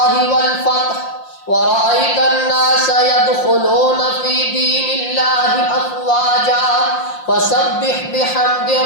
والفتح ورأيت الناس يدخلون في دين الله أفواجا فسبح بحمد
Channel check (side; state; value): right; late; 5.7 ms